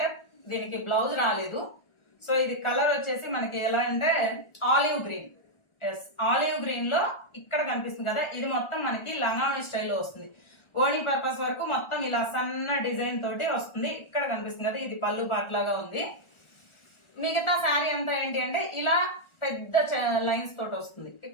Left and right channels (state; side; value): late; right; 1.4 ms